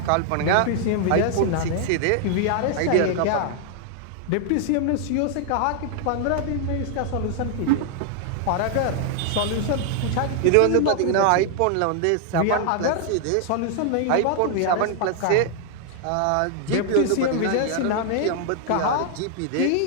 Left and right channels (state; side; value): different; both; correlation 0.00